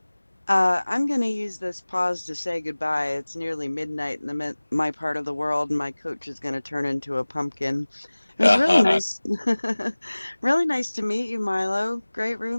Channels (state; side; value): inverted; both; correlation -1.00